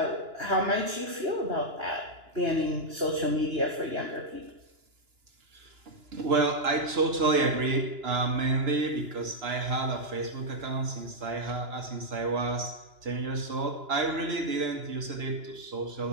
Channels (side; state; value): left; late; 2.9 ms